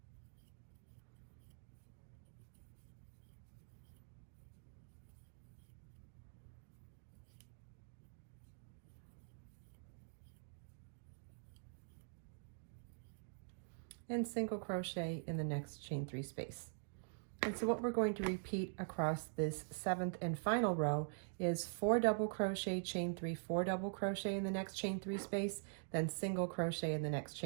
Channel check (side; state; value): left; silent; digital silence